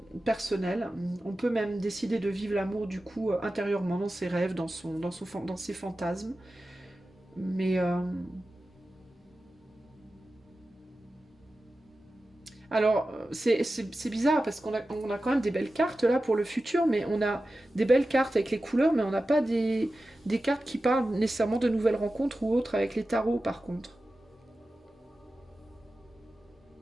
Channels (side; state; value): both; normal; correlation 0.94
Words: personnel. On peut même décider de vivre l'amour du coup intérieurement, dans ses rêves, dans ses fantasmes. Mais... Alors, c'est bizarre parce on a quand même des belles cartes là pour le futur, mais on a des belles cartes avec les couleurs, mais on n'a pas des cartes qui parlent nécessairement de nouvelles rencontres ou autres avec les tarots par contre.